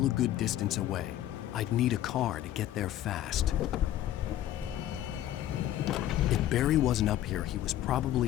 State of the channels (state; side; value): quieter; right; 12.8 dB